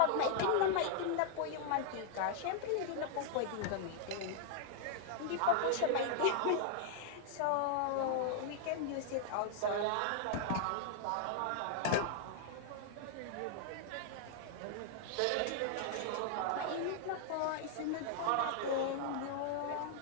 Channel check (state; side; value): different; both; correlation -0.01